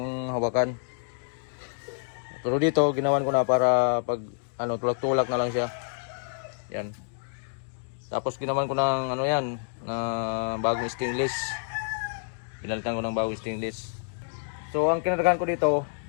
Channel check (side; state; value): right; silent; digital silence